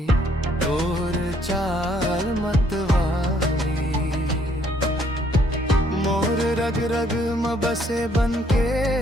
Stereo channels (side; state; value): both; normal; correlation 0.66